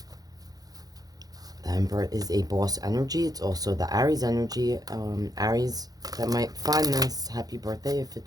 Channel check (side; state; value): left; late; 0.18 ms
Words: The Emperor is a boss energy. It's also the Aries energy. Aries that might find this, happy birthday if